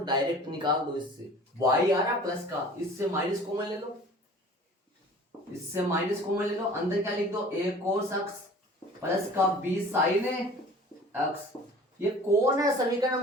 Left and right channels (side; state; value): both; normal; correlation 0.45